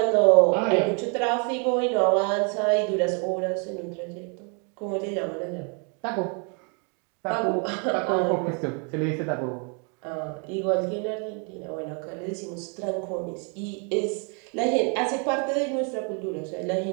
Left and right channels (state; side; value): quieter; left; 37.2 dB